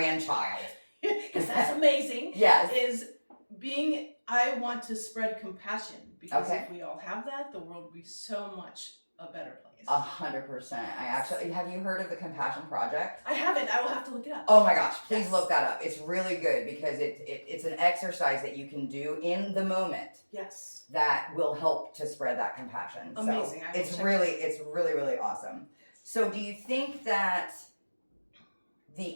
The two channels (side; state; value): both; inverted; correlation -1.00